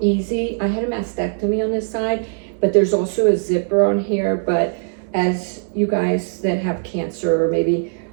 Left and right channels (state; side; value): silent; left; digital silence